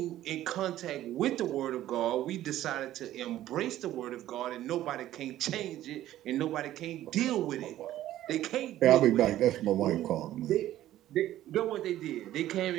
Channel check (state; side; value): quieter; left; 13.5 dB